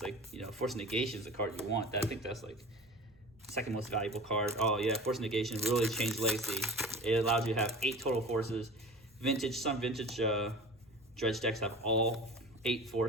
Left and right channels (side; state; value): right; noise; rumble, 29 dB below the sound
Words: like, you know, Force Negation is the card you want. I think that's like second most valuable card. Oh yeah, Force Negation really changed Legacy. It allowed you to have 8 total forces. Some vintage Dredge decks have all 8